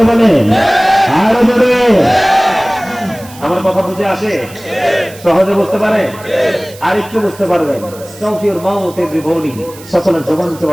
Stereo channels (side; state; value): right; noise; hiss, 20 dB below the sound